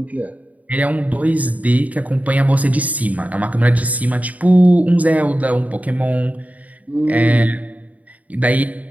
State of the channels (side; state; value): left; late; 0.072 ms